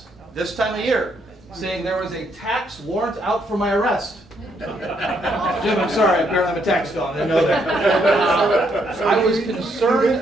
this time of year saying there was a tax warrant out for my arrest. Jim, I'm sorry, apparently I'm a tax felon, I didn't know that. I was concerned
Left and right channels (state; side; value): normal; both; correlation 0.73